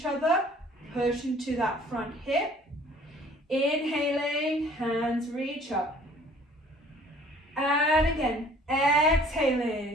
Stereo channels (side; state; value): both; normal; correlation 0.54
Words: other. Push into that front hip. Inhaling, hands reach up. And again,